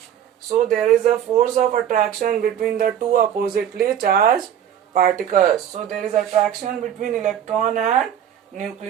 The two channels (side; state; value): left; quieter; 9.8 dB